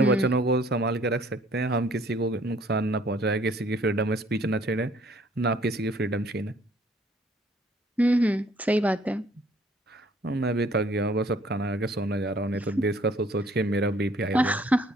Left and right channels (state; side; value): normal; both; correlation 0.60